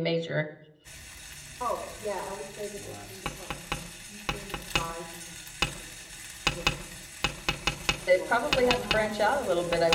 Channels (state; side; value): identical; both; correlation 1.00